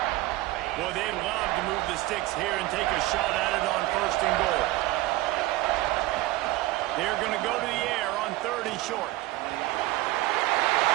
Well, they'd love to move the sticks here and take a shot at it on 1st and goal. They're going to go to the air on 3rd and short.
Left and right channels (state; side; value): quieter; left; 18.1 dB